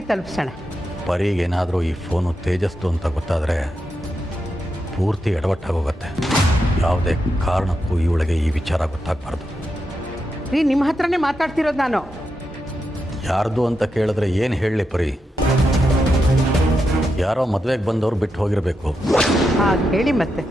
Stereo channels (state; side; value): normal; both; correlation 0.86